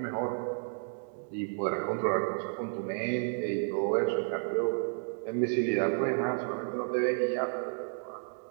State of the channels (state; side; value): silent; left; digital silence